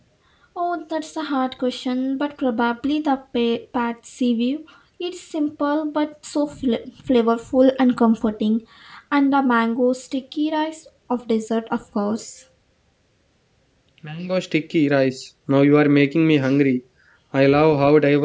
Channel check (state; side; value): identical; both; correlation 1.00